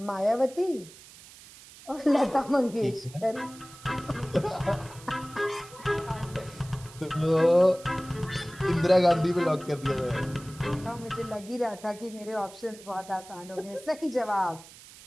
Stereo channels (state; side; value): noise; right; hiss, 20 dB below the sound